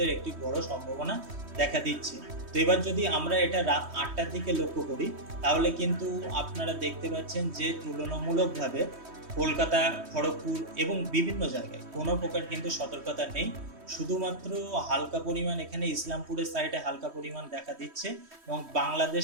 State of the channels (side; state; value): left; late; 3.1 ms